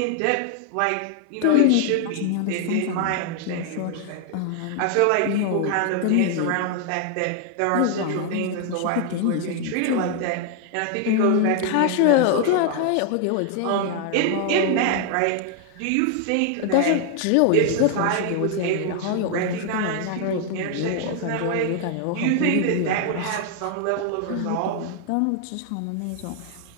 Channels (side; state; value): both; different; correlation 0.00